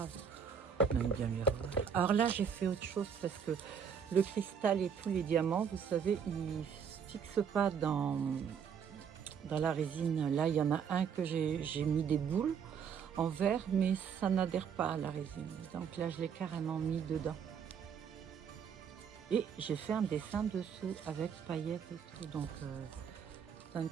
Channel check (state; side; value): quieter; left; 7.2 dB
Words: On aime bien les revoir. Alors là, j'ai fait autre chose parce que le cristal et tous les diamants, vous savez, ils ne se fixent pas dans la résine. Là, il y en a un que j'ai mis des boules en verre, mais ça n'adhère pas à la résine. Donc là, je l'ai carrément mis dedans. Et j'ai fait un dessin dessous avec paillettes et tout, donc teint de